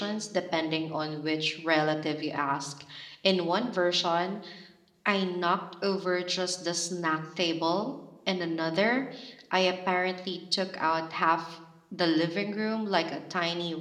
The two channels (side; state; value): both; identical; correlation 1.00